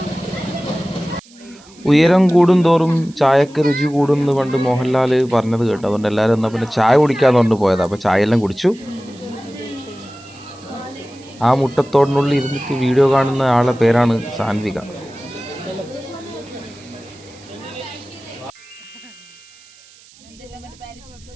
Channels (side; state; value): right; noise; hiss, 25 dB below the sound